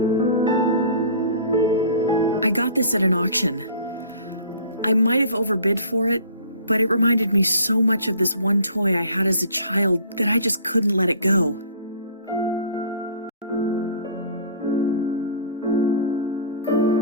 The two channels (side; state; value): both; inverted; correlation -0.47